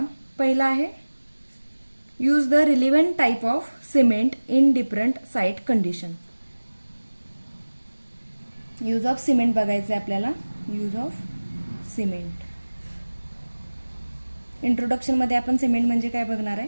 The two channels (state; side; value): inverted; both; correlation -1.00